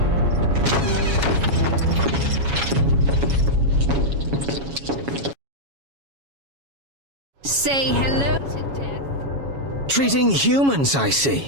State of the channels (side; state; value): left; late; 7.2 ms